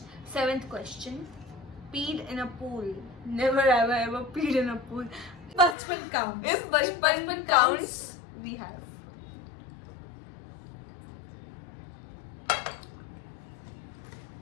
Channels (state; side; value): drops out; right; at 5.8 s